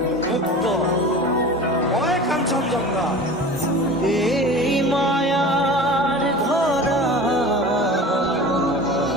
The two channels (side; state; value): both; normal; correlation 0.36